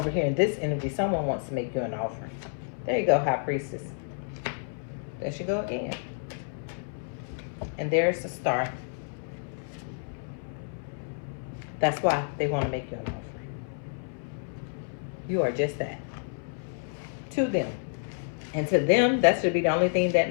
here in this energy, someone wants to make you an offering. There you go, High Priestess. There she go again. And there's the Star. That's why they want to make you an offering. You are just that. To them. And to them, that should be the only thing that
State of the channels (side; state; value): right; silent; 58 dB below the other